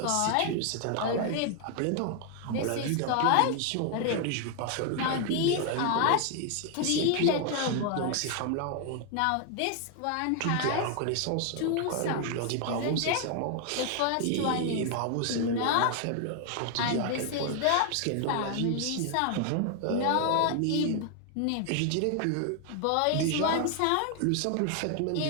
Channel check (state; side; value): different; both; correlation 0.00